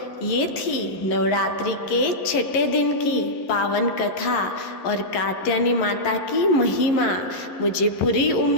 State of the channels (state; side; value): late; right; 11 ms